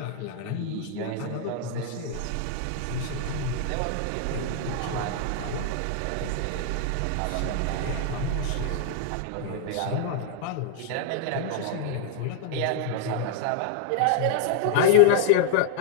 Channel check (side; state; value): both; different; correlation 0.00